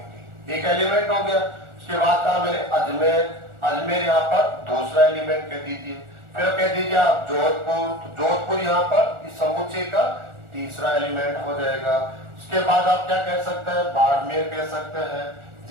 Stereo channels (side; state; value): left; late; 1.4 ms